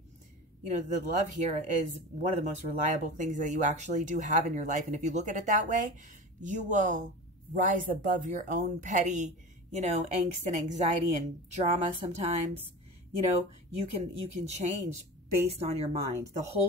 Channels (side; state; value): both; normal; correlation 0.32